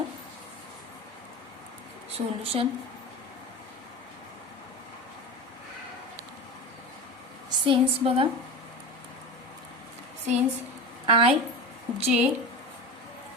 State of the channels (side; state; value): both; normal; correlation 0.27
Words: Solution since बघा, since I J